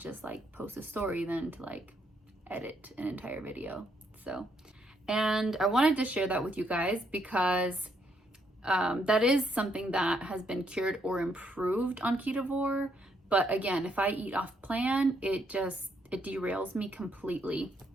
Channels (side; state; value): both; normal; correlation 0.74